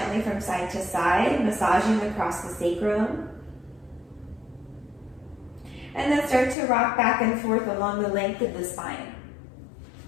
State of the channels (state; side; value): drops out; right; at 6.6 s